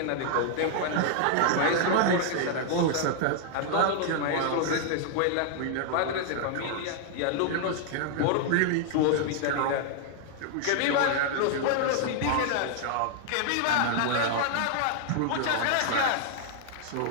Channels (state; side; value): different; both; correlation 0.00